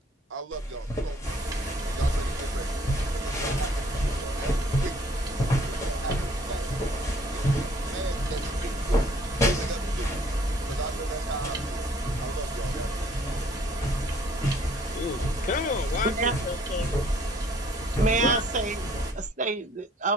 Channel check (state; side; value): normal; both; correlation 0.60